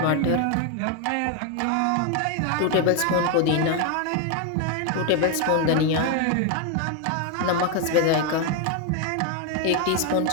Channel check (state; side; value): different; both; correlation 0.01